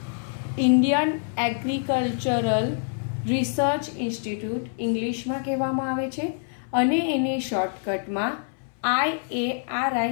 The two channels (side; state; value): right; silent; 60 dB below the other